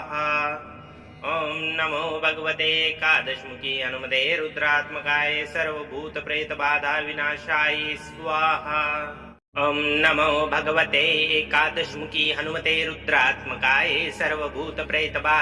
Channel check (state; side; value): identical; both; correlation 1.00